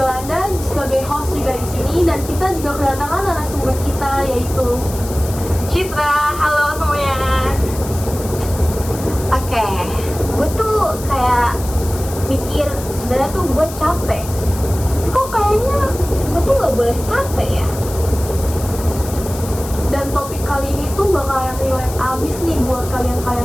sebagai host juga di sini, dan kita juga kedatangan narasumber kita yaitu Citra. Halo semuanya. Oke, gue tuh kayak mikir sebenarnya tuh gue capek. Kok kayaknya gue tuh nggak boleh capek ya? Dan topik kali ini tuh bakalan relate abis nih buat kalian-kalian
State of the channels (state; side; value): noise; left; hiss, 13 dB below the sound